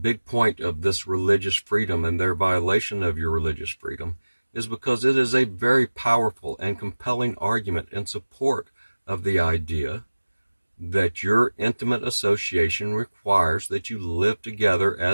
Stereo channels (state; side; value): inverted; both; correlation -1.00